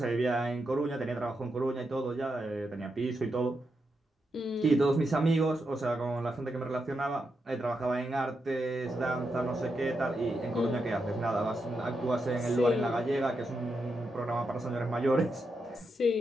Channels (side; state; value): both; normal; correlation 0.85